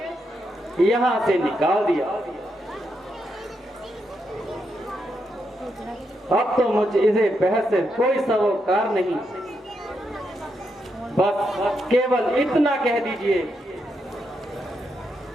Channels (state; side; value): normal; both; correlation 0.82